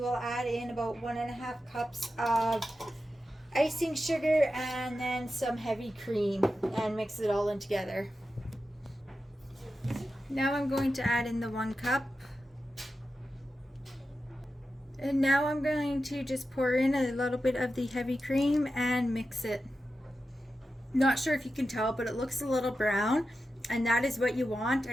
add in about 1.5 cups of icing sugar and then some heavy cream and mix it all in together. Now I'm going to add in the 1 cup. And now I'm going to just pour in a little bit of the heavy cream and mix it. Not sure if you can tell, but it looks a little brown, and that is what you want,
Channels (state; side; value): normal; both; correlation 0.91